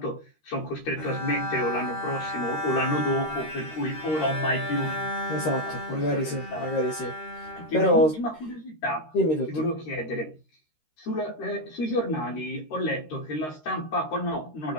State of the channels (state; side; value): late; right; 13 ms